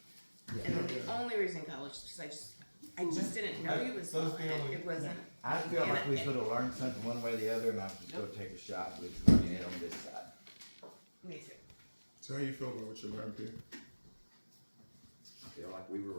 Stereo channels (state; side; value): inverted; both; correlation -1.00